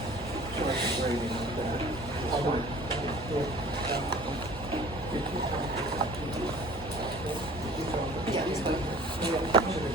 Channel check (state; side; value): normal; both; correlation 0.48